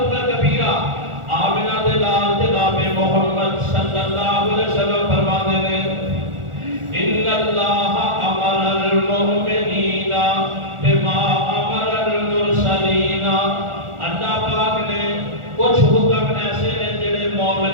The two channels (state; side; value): late; left; 1.4 ms